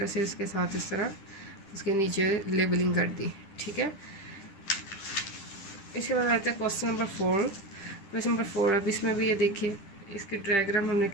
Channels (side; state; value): right; late; 10 ms